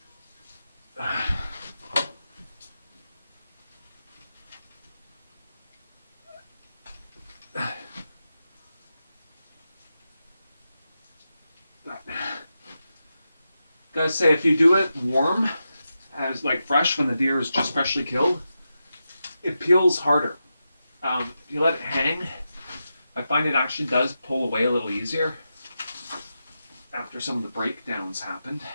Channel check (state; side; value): inverted; both; correlation -0.89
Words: Gotta say, if you do it warm, as like fresh when the deer is just freshly killed, it peels harder. If you let it hang, I find it actually does pull away a little easier after some of the breakdowns happened.